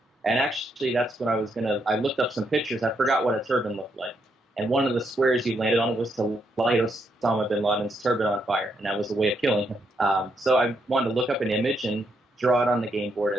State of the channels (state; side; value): normal; both; correlation 0.77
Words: And actually, that's when I looked up some pictures. I forgot what a turban looked like. And one of the squares you landed on was to light Osama bin Laden's turban on fire. And that was a way of killing him. So I wanted to look up an image and draw it on the game board